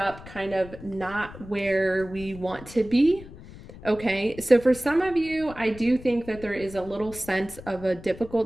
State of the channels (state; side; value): noise; left; rumble, 16 dB below the sound